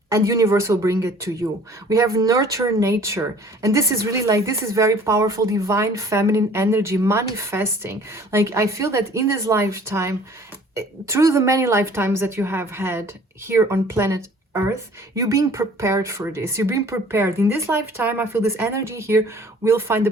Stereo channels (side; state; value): both; normal; correlation 0.51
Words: and universe will bring it to you. We have nurture nature, and this is really like, this is very powerful divine feminine energy manifesting. Like, I feel that in this lifetime, through the many lifetimes that you have had here on planet Earth, you're being prepared for this. You're being prepared. In this lifetime, I feel this energy here will find the